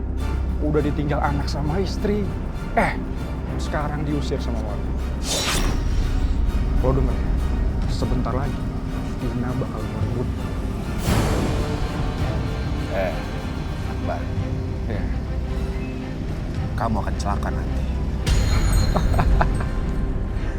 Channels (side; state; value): both; identical; correlation 1.00